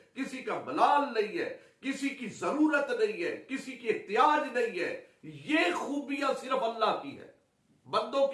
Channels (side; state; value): both; identical; correlation 1.00